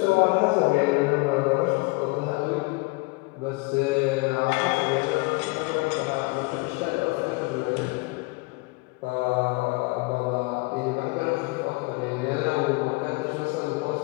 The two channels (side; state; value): right; quieter; 26.1 dB